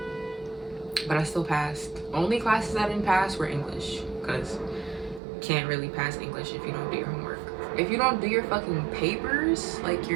But I still passed. Only classes I didn't pass were English. Because you can't really pass English if you don't do your homework. If you don't do your fucking papers, like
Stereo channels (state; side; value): drops out; left; at 5.2 s